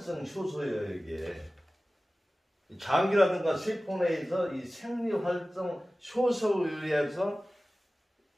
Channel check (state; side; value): normal; both; correlation 0.97